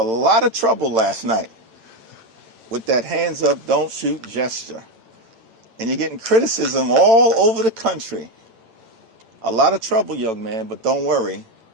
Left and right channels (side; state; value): left; late; 8.9 ms